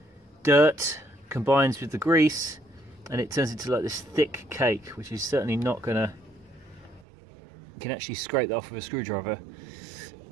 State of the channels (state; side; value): drops out; left; at 7.1 s